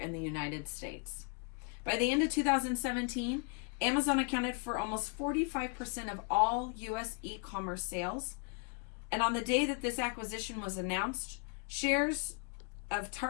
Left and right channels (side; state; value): right; quieter; 36.0 dB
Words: the United States. By the end of 2017, Amazon accounted for almost 45% of all U.S. e-commerce sales. And on the day that this acquisition was announced, shares of